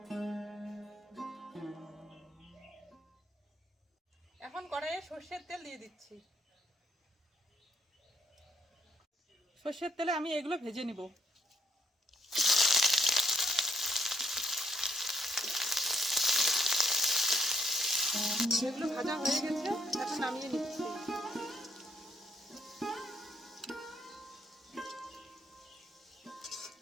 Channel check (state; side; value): normal; both; correlation 0.72